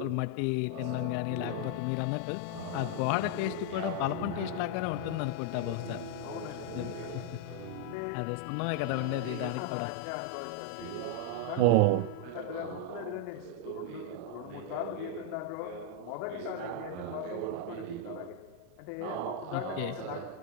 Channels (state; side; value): different; both; correlation 0.00